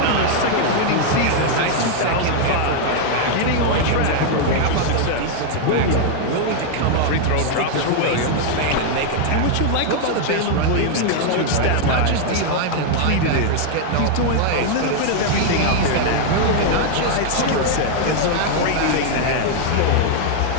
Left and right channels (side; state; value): both; different; correlation 0.00